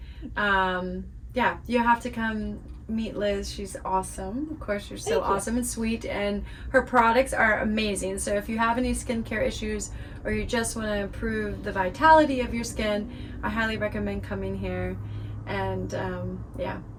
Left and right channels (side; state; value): both; identical; correlation 1.00